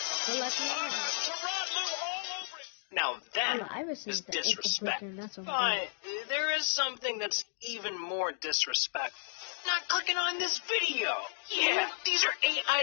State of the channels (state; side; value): silent; right; digital silence